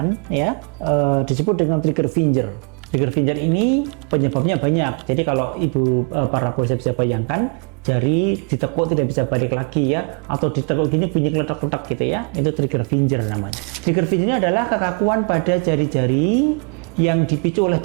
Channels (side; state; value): left; quieter; 37.4 dB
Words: ya disebut dengan trigger finger. Trigger finger ini penyebabnya banyak. Jadi kalau ibu para pemirsa bisa bayangkan, jari ditekuk tidak bisa balik lagi ya, atau ditekuk gini bunyi kletak-kletak gitu ya, itu trigger finger namanya. Trigger finger ini adalah kekakuan pada jari-jari yang dipicu oleh